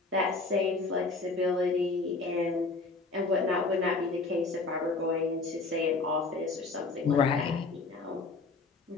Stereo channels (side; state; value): right; quieter; 3.8 dB